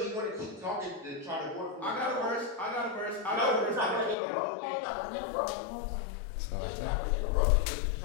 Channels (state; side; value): drops out; right; at 4.2 s